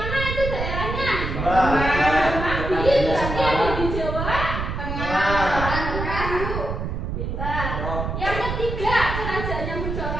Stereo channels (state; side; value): noise; right; rumble, 4 dB below the sound